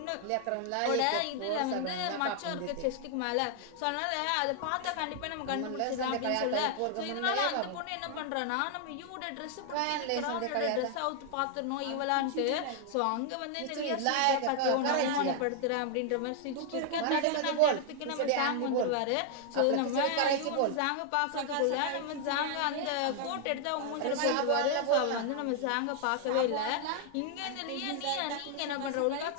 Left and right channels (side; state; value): both; different; correlation 0.00